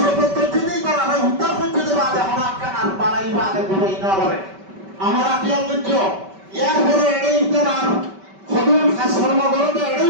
করছে নেই তারা উদ্ধার করতে দেবে আগে হনাক্কান আর বাড়াইবা আগে ঘুরাই না বলে আমরা কি করছ এরপরে এড়েই তার সদুল খাস কর্মকরতে এড়েই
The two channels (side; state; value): left; late; 5.2 ms